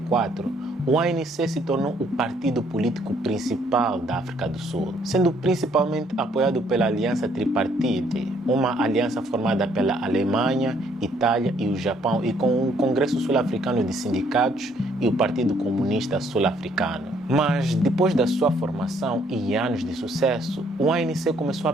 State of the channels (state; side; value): normal; both; correlation 0.66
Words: o ANC se tornou o partido político principal da África do Sul, sendo principalmente apoiado pela Aliança Tripartite, uma aliança formada pela Alemanha, Itália e o Japão, e com o Congresso Sul-Africano de Sindicatos e o Partido Comunista Sul-Africano. Mas depois da sua formação e anos de sucesso, o ANC começou a